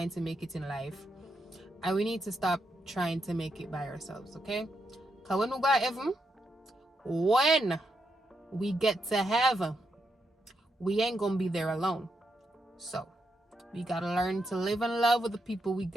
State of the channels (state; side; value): normal; both; correlation 0.82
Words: to make it in life, and we need to stop trying to make it by ourselves, okay? Because when we go to heaven, when we get to heaven, we ain't gonna be there alone. So we gotta learn to live in love with the people we